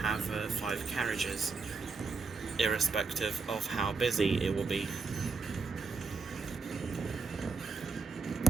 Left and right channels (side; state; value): left; quieter; 4.4 dB